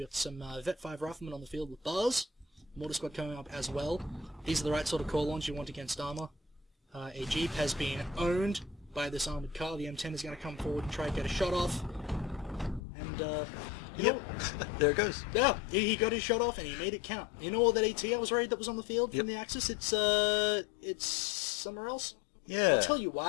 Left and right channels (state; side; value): drops out; right; at 12.8 s